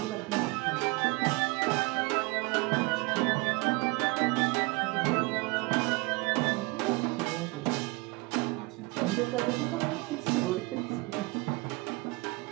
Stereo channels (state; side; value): quieter; left; 25.4 dB